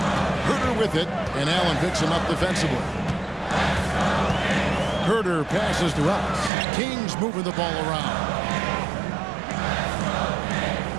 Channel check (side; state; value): left; drops out; at 6.5 s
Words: Huerter with it, and Allen picks him up defensively. Huerter passes to us. Kings moving the ball around.